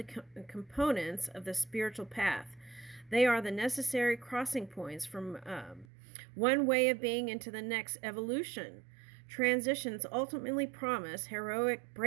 components of the spiritual path. They are the necessary crossing points from one way of being into the next evolution. Transitions ultimately promise heroic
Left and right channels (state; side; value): drops out; left; at 5.9 s